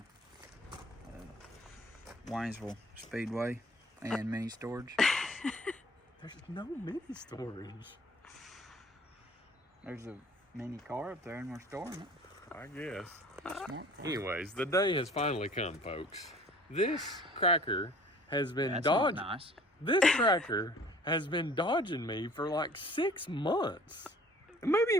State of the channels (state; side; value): normal; both; correlation 0.50